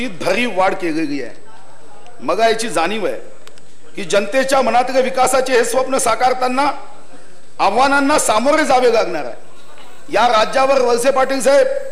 भरीव वाढ केलेली आहे. मला याची जाणीव आहे की जनतेच्या मनातल्या विकासाचे हे स्वप्न साकारताना आव्हानांना सामोरे जावे लागणार आहे. या राज्यावर वळसे पाटील साहेब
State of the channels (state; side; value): identical; both; correlation 1.00